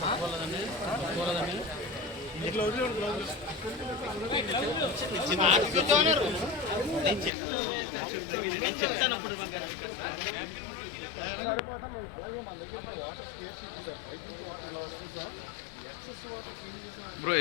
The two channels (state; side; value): drops out; right; at 7.3 s